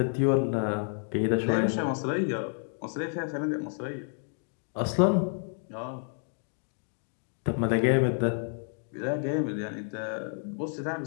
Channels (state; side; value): silent; right; 58 dB below the other